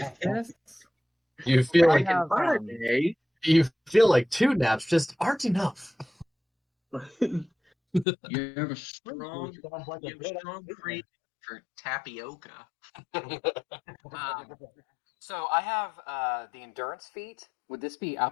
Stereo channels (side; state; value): right; drops out; at 8.1 s